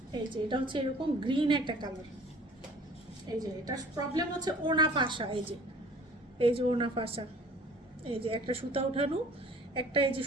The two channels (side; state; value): both; normal; correlation 0.50